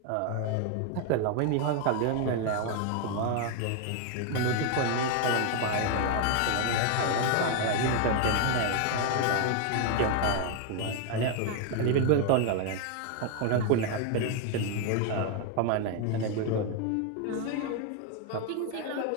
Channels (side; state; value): both; different; correlation 0.01